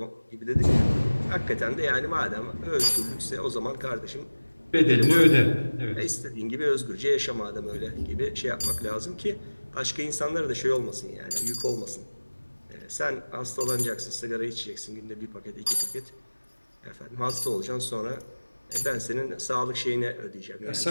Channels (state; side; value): inverted; both; correlation -1.00